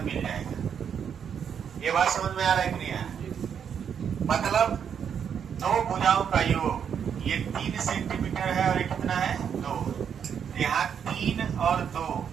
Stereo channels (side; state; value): left; quieter; 7.8 dB